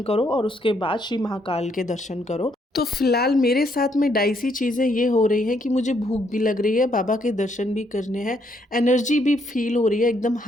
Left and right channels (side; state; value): both; normal; correlation 0.72